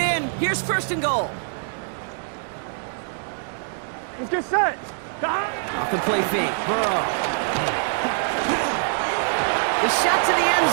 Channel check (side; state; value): left; silent; digital silence